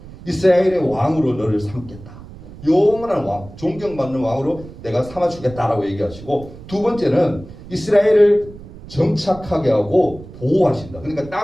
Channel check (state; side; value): noise; right; rumble, 17 dB below the sound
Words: 이스라엘의 왕으로 너를 삼겠다. 영원한 왕, 존경받는 왕으로 내가 삼아주겠다라고 얘기하시고 두 번째는 이스라엘을 정착하게 하고 보호하신다. 그러니까